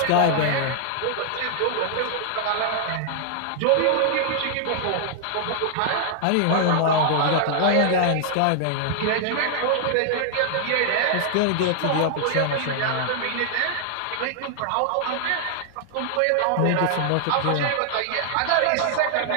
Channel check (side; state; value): both; different; correlation 0.00